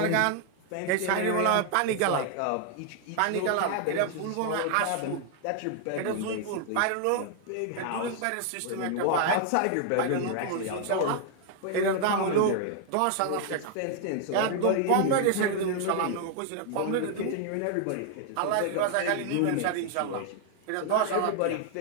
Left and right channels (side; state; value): both; different; correlation 0.00